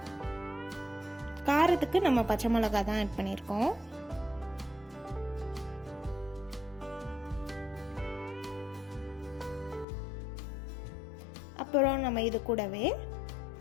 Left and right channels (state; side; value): drops out; right; at 9.9 s